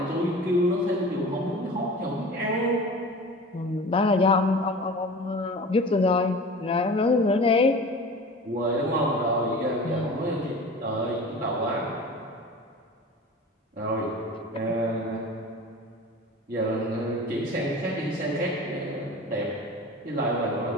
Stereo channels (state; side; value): normal; both; correlation 0.37